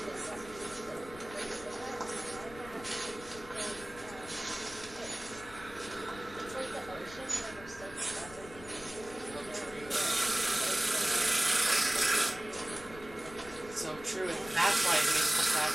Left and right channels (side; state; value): left; noise; rumble, 17 dB below the sound